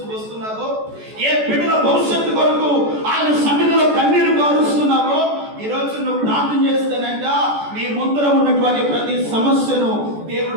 వస్తున్నారో, ఏ బిడ్డల భవిష్యత్తు కొరకు ఆయన సన్నిధిలో కన్నీరు కారుస్తున్నారో, ఈ రోజు నువ్వు ప్రార్థన చేస్తానంట నీ ముందర ఉన్నటువంటి ప్రతి సమస్యను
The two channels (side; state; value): left; late; 14 ms